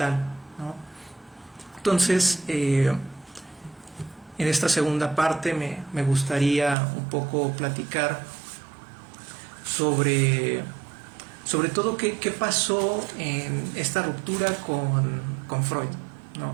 ¿no? Entonces, en esta segunda parte me gustaría un poco platicar sobre todo qué pasó en esta ruptura con Freud,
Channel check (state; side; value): drops out; left; at 6.8 s